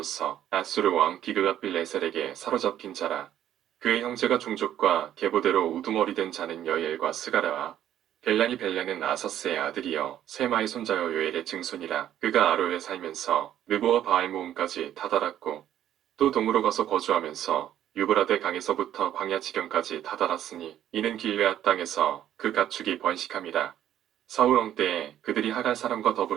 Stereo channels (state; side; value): quieter; left; 11.2 dB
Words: 아수르 왕 비그가빌레셀에게 사로잡힌 자라. 그의 형제가 종족과 계보대로 우두머리 된 자는 여엘과 스가랴와 벨란은 아사스의 아들이요 세마의 손자여 요엘의 증손이라. 그가 아로에 살면서 느보와 바알 모음까지 다다랐고 또 동으로 가서 거주하면서 유브라데 강에서부터 광야 지경까지 다다랐으니 이는 길르앗 땅에서 그 가축이 번식함이라. 사울 왕 때에 그들이 하갈 사람과